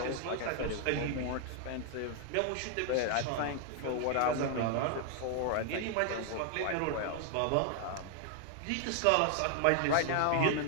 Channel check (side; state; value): both; different; correlation 0.00